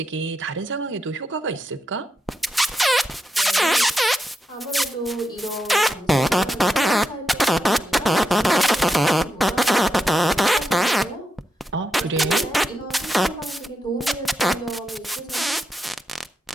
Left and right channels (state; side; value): normal; both; correlation 0.84